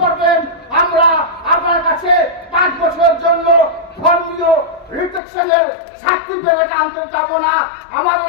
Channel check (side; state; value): right; drops out; at 5.2 s